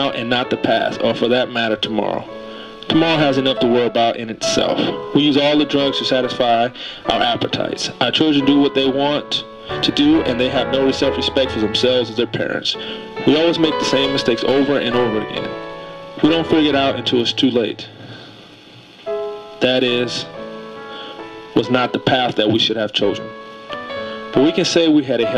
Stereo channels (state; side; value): identical; both; correlation 1.00